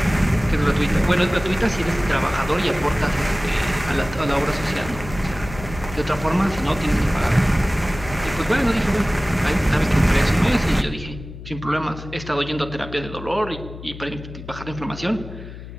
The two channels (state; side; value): noise; left; hum, 13 dB below the sound